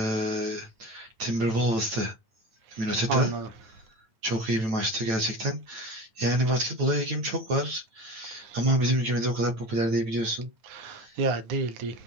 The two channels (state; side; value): late; left; 9.0 ms